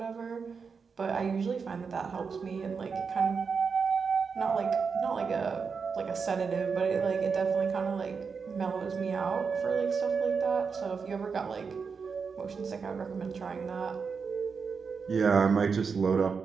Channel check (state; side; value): quieter; left; 5.5 dB